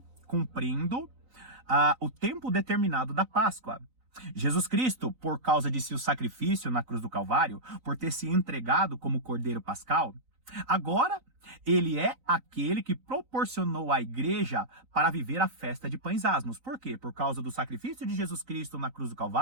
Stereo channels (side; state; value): left; late; 3.9 ms